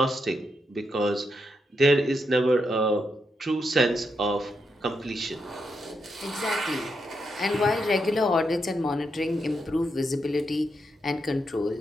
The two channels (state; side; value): normal; both; correlation 0.82